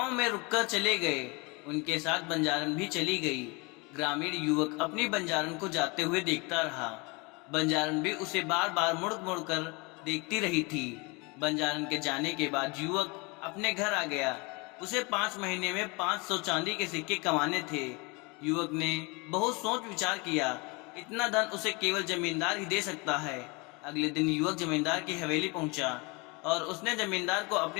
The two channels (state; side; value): quieter; right; 28.2 dB